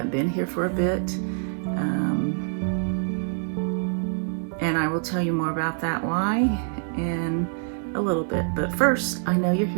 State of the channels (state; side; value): silent; left; digital silence